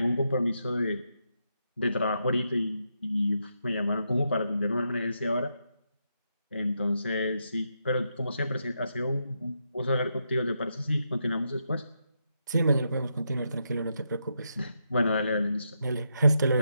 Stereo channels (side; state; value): both; inverted; correlation -0.82